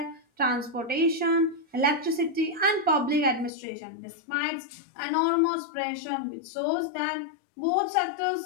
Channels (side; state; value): right; drops out; at 3.5 s